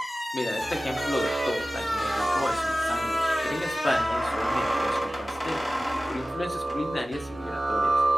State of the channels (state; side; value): normal; both; correlation 0.96